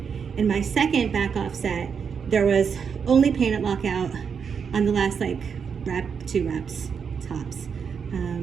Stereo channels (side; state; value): left; quieter; 6.5 dB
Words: in my second back-off set, there was only pain at lockout on the last rep, 2 reps tops.